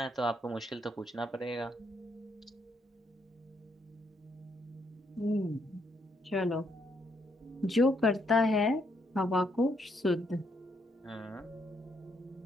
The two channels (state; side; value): normal; both; correlation 0.74